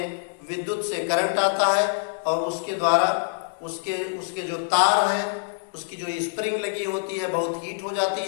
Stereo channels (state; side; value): silent; right; digital silence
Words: विद्युत से करंट आता है और उसके द्वारा उसके उसके जो तार हैं, उसकी जो स्प्रिंग लगी होती है बहुत हीट हो